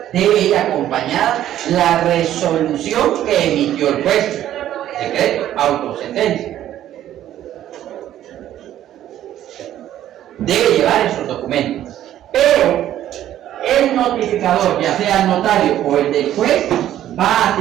debe ir acompañada la resolución que emitió el juez, decreto, autosentencia. Debe llevar esos documentos, pero el notificador, ya sea el notario o el del juez, va a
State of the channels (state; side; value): quieter; left; 12.1 dB